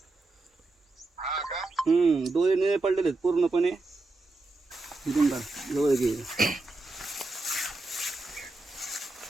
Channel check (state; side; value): quieter; left; 3.2 dB